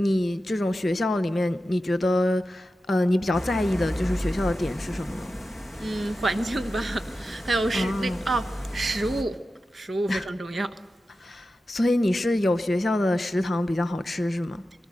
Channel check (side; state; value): both; normal; correlation 0.92